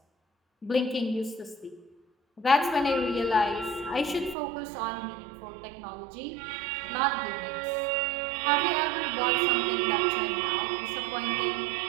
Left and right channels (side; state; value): left; drops out; at 4.4 s